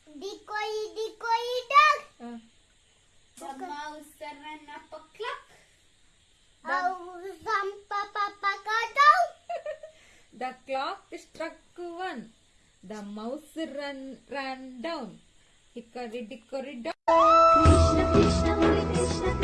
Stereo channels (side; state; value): both; identical; correlation 1.00